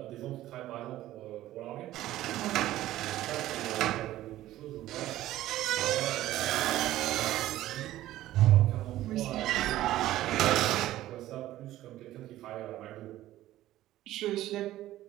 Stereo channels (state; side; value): quieter; left; 14.6 dB